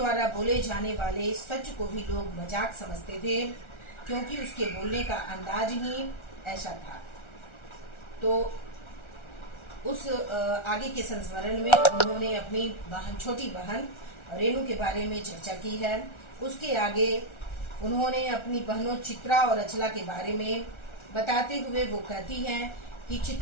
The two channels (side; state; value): right; late; 1.4 ms